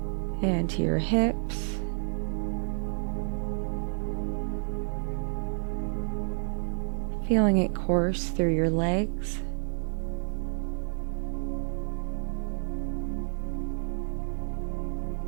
and to your hips, feeling it course through your legs,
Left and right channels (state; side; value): silent; left; digital silence